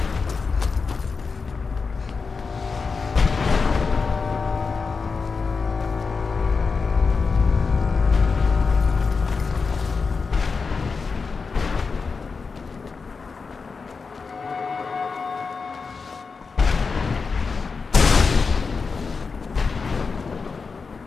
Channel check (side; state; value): right; quieter; 4.8 dB